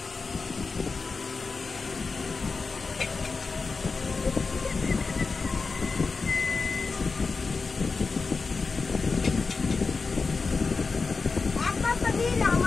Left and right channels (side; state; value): right; quieter; 4.4 dB